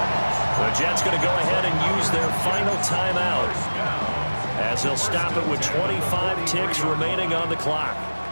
The Jets going to go ahead and use their final timeout as they'll stop it with 25 ticks remaining on the clock.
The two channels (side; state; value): both; inverted; correlation -1.00